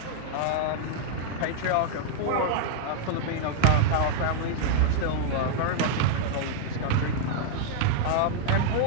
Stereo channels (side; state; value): both; different; correlation -0.01